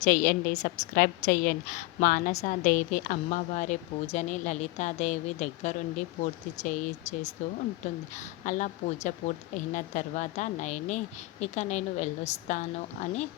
చేయండి, సబ్స్క్రైబ్ చేయండి. మానసాదేవి అమ్మవారి పూజని లలితాదేవి దగ్గరుండి పూర్తి చేస్తూ ఉంటుంది. అలా పూజ పూర్తి అయిన తర్వాత నయని ఇక నేను వెళ్ళొస్తాను అని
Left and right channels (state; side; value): quieter; right; 20.2 dB